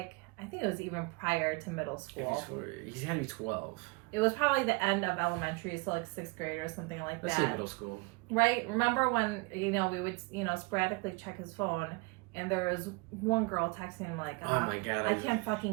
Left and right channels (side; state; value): left; quieter; 27.2 dB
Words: I think it was even prior to middle school. He's had to be 12. It was probably the end of elementary, so like 6th grade or something like Let's that. say middle school. Right? Remember when, we would, sporadically check his phone and there was one girl texting him like, oh my God. I can't